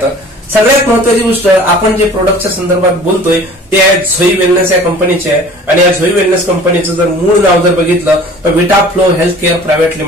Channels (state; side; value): normal; both; correlation 0.46